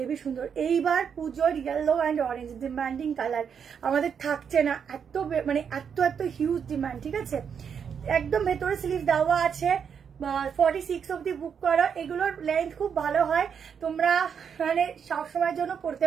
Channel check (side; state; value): left; quieter; 7.2 dB